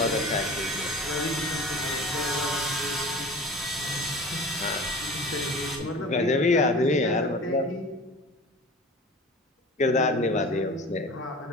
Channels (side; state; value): both; normal; correlation 0.39